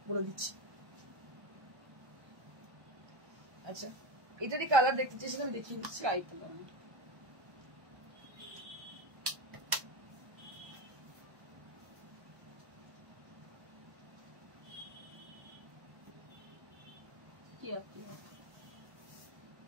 বলে দিচ্ছি। আচ্ছা এটারই কালার দেখতে চাই, সেখানে দেখিয়ে দিচ্ছি।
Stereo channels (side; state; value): left; late; 1.3 ms